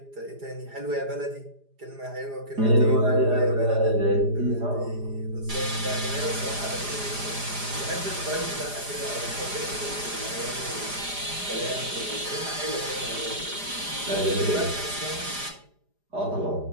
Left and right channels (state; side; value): late; left; 4.9 ms